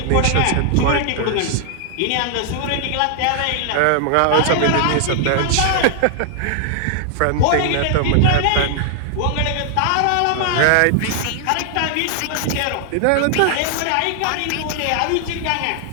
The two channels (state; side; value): different; both; correlation 0.00